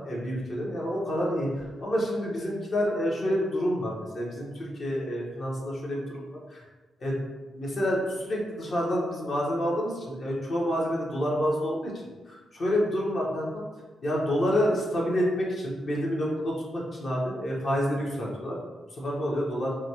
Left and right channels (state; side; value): normal; both; correlation 0.84